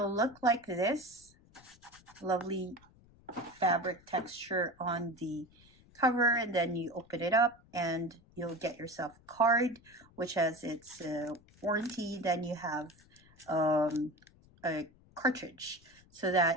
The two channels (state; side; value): noise; left; rumble, 27 dB below the sound